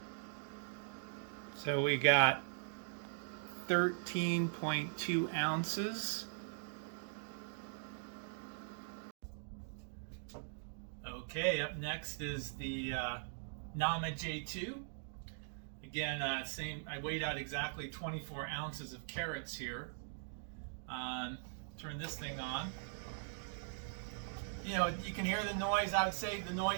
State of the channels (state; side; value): silent; left; digital silence